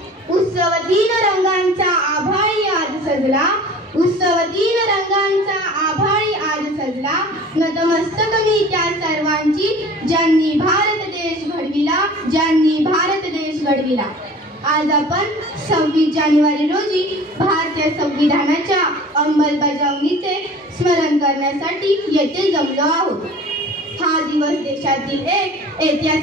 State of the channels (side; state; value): both; normal; correlation 0.43